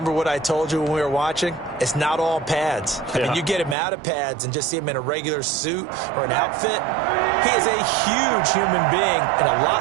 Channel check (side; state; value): left; drops out; at 3.8 s